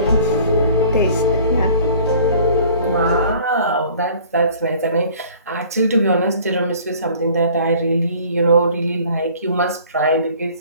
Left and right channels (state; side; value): inverted; both; correlation -0.51